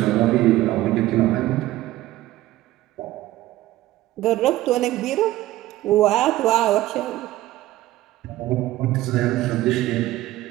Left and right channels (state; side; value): quieter; left; 16.0 dB